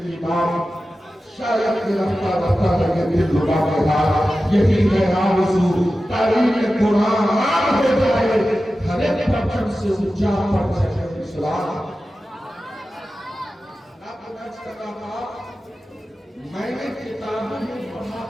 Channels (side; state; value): both; normal; correlation 0.94